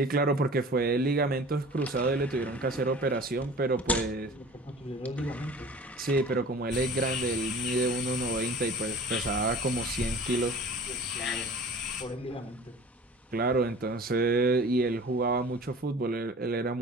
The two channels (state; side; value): normal; both; correlation 0.42